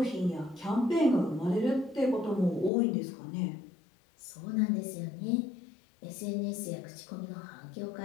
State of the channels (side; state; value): right; drops out; at 2.7 s